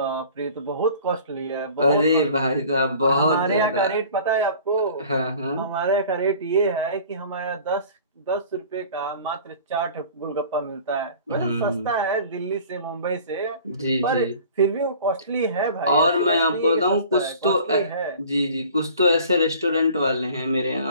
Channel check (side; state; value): both; inverted; correlation -0.46